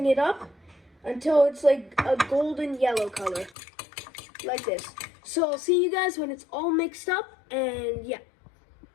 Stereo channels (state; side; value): drops out; right; at 3.5 s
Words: it up until it's like a golden yellow color, like this. So I'll see you guys when it's all mixed up, and yeah.